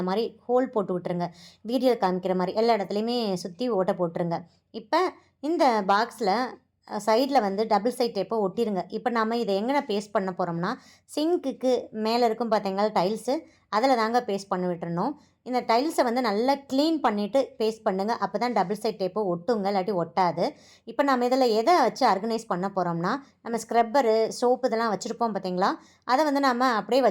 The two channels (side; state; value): both; identical; correlation 1.00